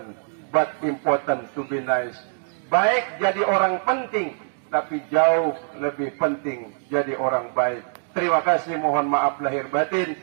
but important to be nice. Baik jadi orang penting, tapi jauh lebih penting jadi orang baik. Terima kasih, mohon maaf lahir batin.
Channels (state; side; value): silent; left; digital silence